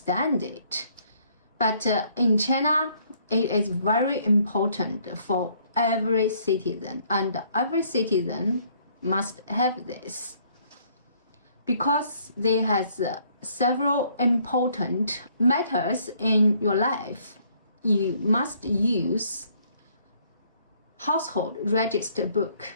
it. But in China, it is very important for every citizen, and every citizen must have this because there has several important matters in your life. You must use household register book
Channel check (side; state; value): both; inverted; correlation -0.64